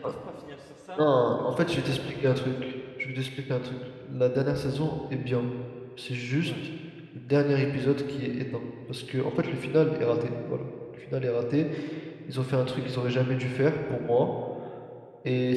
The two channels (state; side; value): identical; both; correlation 1.00